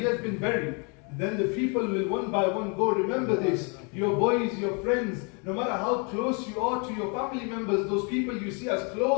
has been buried, then the people will one by one go, remember this, your boys, your friends, no matter how close you are to your family members, those people you see as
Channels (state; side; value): quieter; right; 35.2 dB